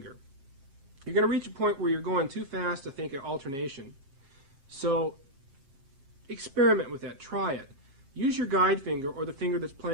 You're going to reach a point where you're going too fast to think of alternation. So experiment with that, try it. Use your guide finger or the finger that's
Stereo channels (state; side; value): late; left; 7.5 ms